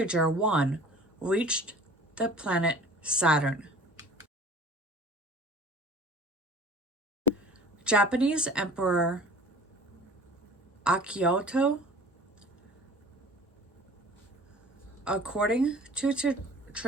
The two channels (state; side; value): normal; both; correlation 0.45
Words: 1 reached the planet Saturn. Japanese Emperor Akihito, according to